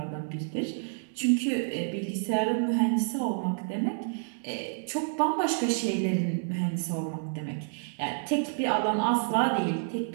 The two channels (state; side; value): silent; left; 59 dB below the other